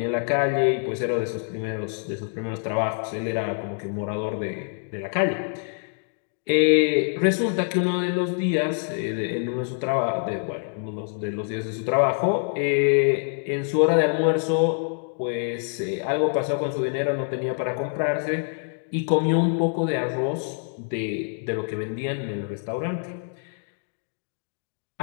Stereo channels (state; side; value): silent; right; 61 dB below the other